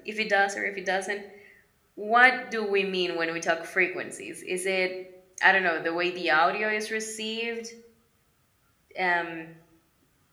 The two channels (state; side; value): identical; both; correlation 1.00